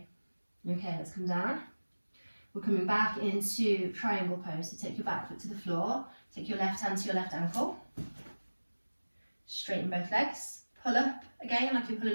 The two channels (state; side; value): inverted; both; correlation -1.00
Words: Okay, let's come down. We're coming back into triangle pose. So take your back foot to the floor. Take your left hand to your left ankle. Straighten both legs. Pull up again like you're